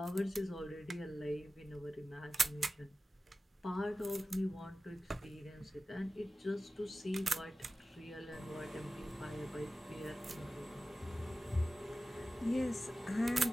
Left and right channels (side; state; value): both; normal; correlation 0.95